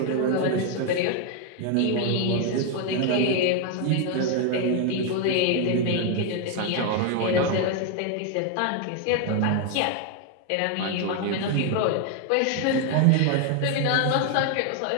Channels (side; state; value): both; different; correlation 0.01